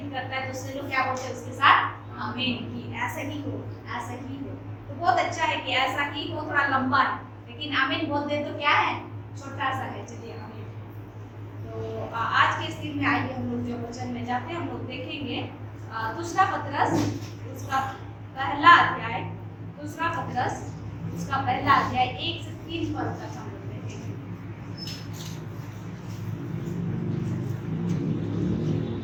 करता है दूसरे लोग क्या बोलते हैं उसके साथ आमीन, कि ऐसा ही हो, ऐसा ही हो। तो बहुत अच्छा है कि ऐसा ही हो, थोड़ा लंबा है, लेकिन आमीन बोल दे तो क्या है, छोटा सा है। चलिए आमीन। तो आज के इस दिन में आइए हम लोग जो वचन में जाते हैं, हम लोग देखेंगे दूसरा पतरस उसका पहला अध्याय, दूसरा पतरस उसका पहला अध्याय 1 से 3 पद तक हम लोग देखेंगे।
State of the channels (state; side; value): identical; both; correlation 1.00